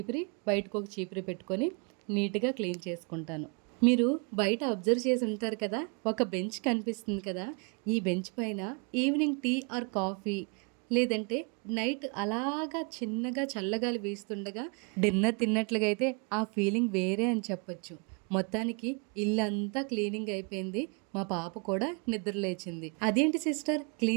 బయటకు ఒక చీపురి పెట్టుకొని నీట్గా క్లీన్ చేసుకుంటాను. మీరు బయట అబ్జర్వ్ చేసి ఉంటారు కదా, ఒక బెంచ్ కనిపిస్తుంది కదా, ఈ బెంచ్ పైన ఈవినింగ్ టీ ఆర్ కాఫీ లేదంటే నైట్ అలాగా చిన్నగా చల్లగాలి వీస్తుండగా డిన్నర్ తిన్నట్లుగా అయితే ఆ ఫీలింగ్ వేరే అని చెప్పొచ్చు. మొత్తానికి ఇల్లంతా క్లీనింగ్ అయిపోయింది. మా పాప కూడా నిద్ర లేచింది. అదేంటి సిస్టర్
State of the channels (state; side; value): quieter; left; 34.5 dB